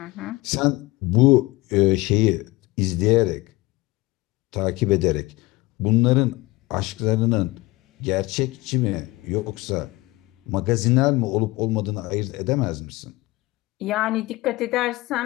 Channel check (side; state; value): right; quieter; 21.2 dB